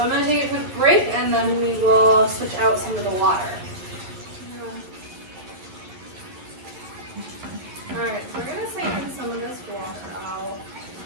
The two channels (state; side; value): late; left; 11 ms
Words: I'm going to take a quick break and then we will switch out some of the water. Alright, so we're going to siphon some of this water out.